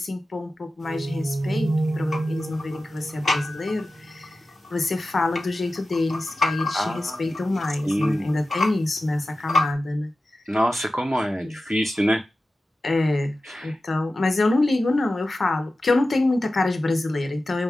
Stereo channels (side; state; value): both; normal; correlation 0.94